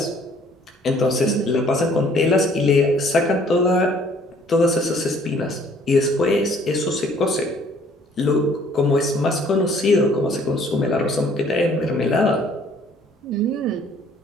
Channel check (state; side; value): normal; both; correlation 0.58